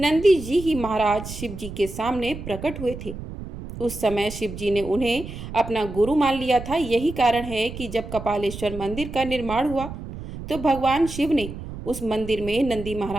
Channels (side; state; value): right; noise; rumble, 10 dB below the sound